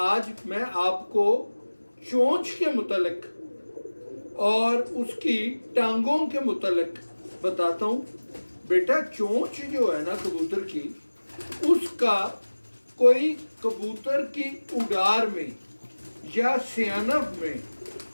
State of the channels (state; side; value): inverted; both; correlation -1.00